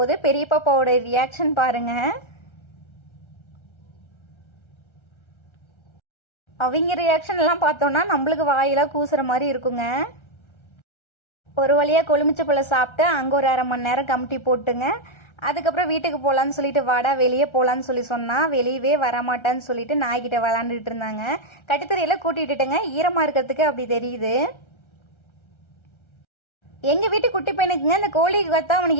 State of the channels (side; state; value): right; late; 1.3 ms